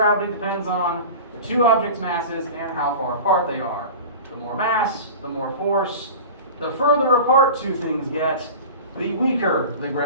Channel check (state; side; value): inverted; both; correlation -0.34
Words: depends on the two objects' masses and how far apart they are. The more mass, the more force. The further apart two things get, the weaker the